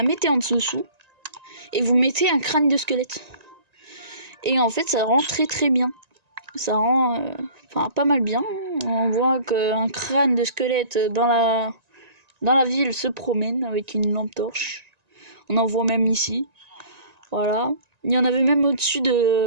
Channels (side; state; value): left; late; 1.9 ms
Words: mettez en dessous. Et vous mettez un crâne de squelette. Et en fait, ça rend très très bien. Ça rend pas mal bien. On voit qu'un crâne de squelette dans la ville se promène avec une lampe torche. On en voit même ici. Voilà. Il y en avait même au-dessus